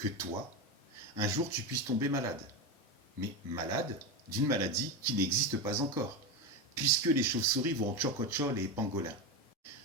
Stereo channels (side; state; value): both; normal; correlation 0.16